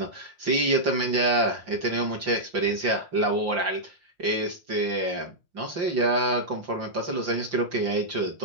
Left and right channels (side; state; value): left; late; 5.7 ms